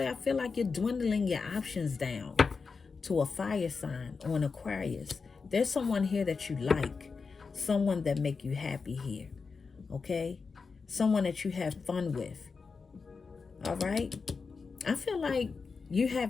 I feel like you're dwindling your options down to a fire sign or an Aquarius. There's someone here that you like. Someone that make you happy here. Okay? Someone that you have fun with. All right? I feel like you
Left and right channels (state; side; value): quieter; right; 4.9 dB